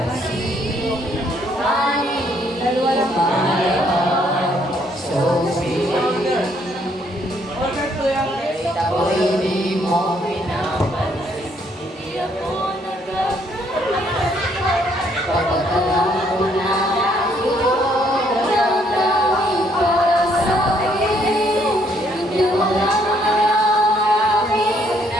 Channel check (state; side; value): normal; both; correlation 0.68